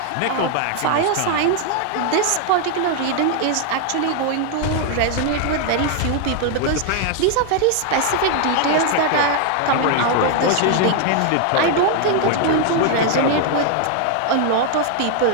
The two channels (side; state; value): both; different; correlation 0.00